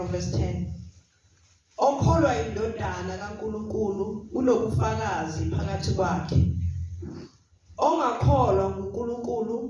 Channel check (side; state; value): both; identical; correlation 1.00